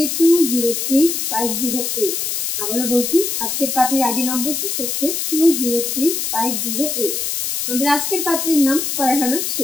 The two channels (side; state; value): left; noise; hiss, 2 dB below the sound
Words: 203508। আবারও বলছি, আজকের পাত্রীর আইডি নম্বরটি হচ্ছে 203508। আমাদের আজকের পাত্রীর নাম ফারহানা